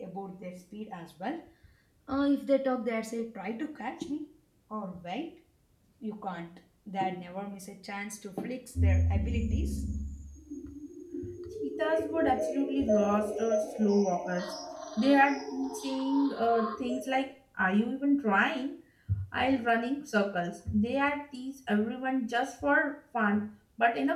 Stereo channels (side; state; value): both; identical; correlation 1.00